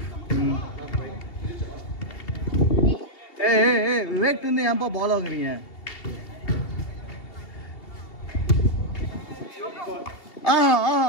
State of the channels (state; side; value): late; right; 2.7 ms